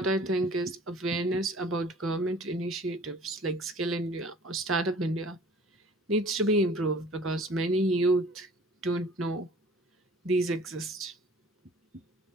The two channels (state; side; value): normal; both; correlation 0.49